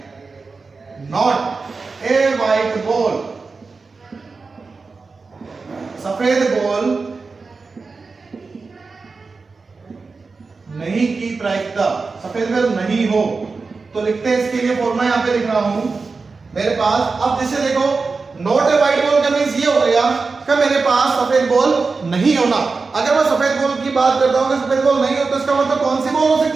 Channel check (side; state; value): left; quieter; 4.3 dB